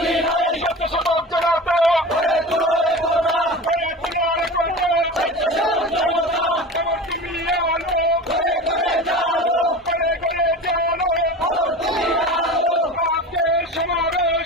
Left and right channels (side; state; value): both; normal; correlation 0.32